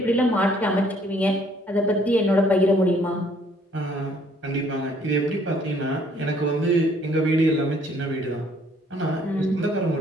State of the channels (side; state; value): both; normal; correlation 0.62